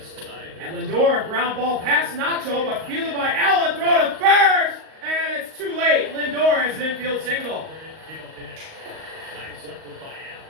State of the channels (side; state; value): left; late; 38 ms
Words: And Lindor, a ground ball past Nacho, but fielded by Allen, throw to first, and it's too late. Lindor has an infield single. Nice effort by